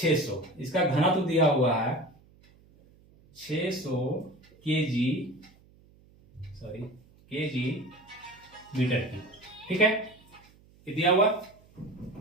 इसका घनत्व दिया हुआ है 600 केजी मीटर की, ठीक है, ये दिया हुआ।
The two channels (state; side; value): noise; right; hum, 28 dB below the sound